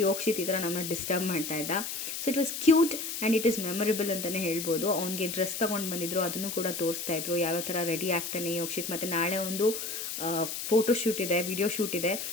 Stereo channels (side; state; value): left; noise; hiss, 5 dB below the sound